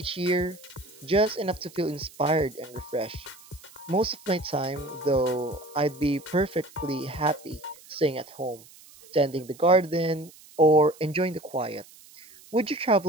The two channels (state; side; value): noise; right; hiss, 23 dB below the sound